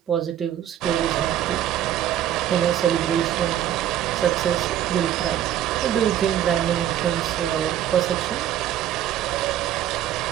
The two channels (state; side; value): quieter; left; 11.3 dB